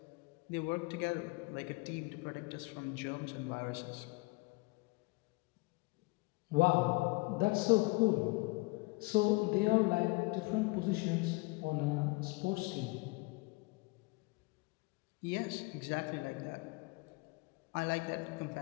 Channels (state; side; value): quieter; right; 26.0 dB